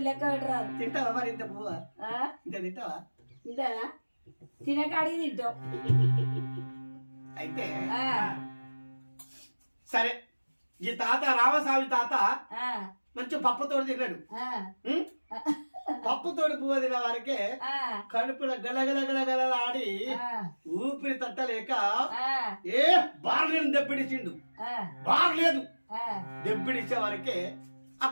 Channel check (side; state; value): both; inverted; correlation -1.00